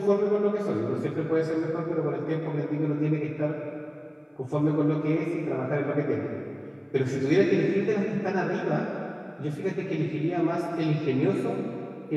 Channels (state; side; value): identical; both; correlation 1.00